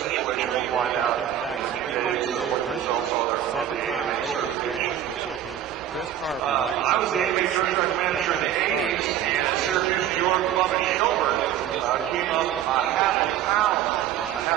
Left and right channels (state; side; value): quieter; left; 11.0 dB